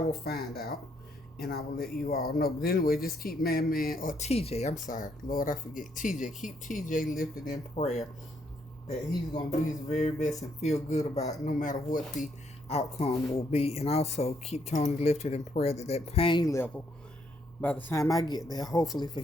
find out. And I will let you all know. But anyway, just keep man, or TJ, I'm sorry. Lord, I forget. TJ, keep TJ lifted in prayer that he's going to do his very best and feel good about it, no matter what the outcome will be. And also keep Tony lifted in prayer that pain level, by the time I get there, hopefully for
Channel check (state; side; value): normal; both; correlation 0.73